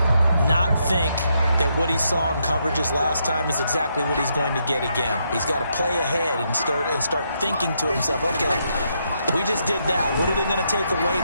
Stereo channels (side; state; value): both; inverted; correlation -0.78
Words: Not think that what he saw in coverages last time is exactly what he's going to get again. He's got to play ahead and start thinking to himself, okay, we just did that. What are they going to take away